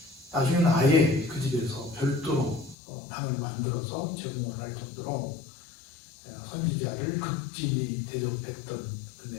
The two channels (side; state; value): right; drops out; at 2.8 s